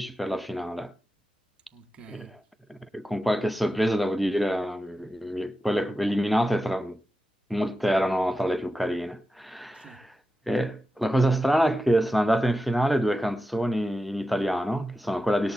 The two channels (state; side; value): normal; both; correlation 0.92